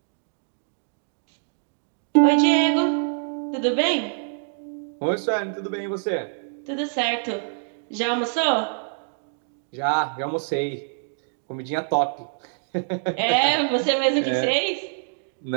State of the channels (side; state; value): left; silent; digital silence